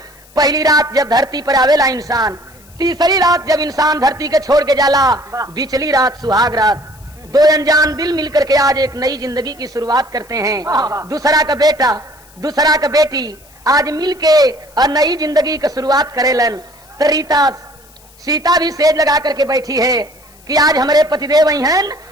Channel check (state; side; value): noise; left; hiss, 27 dB below the sound